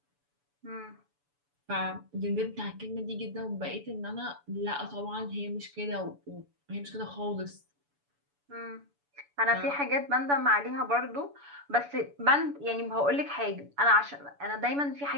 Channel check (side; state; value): left; late; 7.0 ms